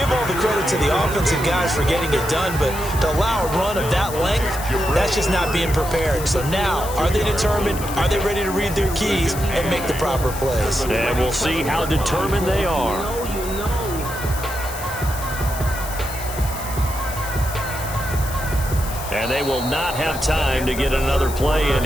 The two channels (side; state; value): left; noise; hiss, 11 dB below the sound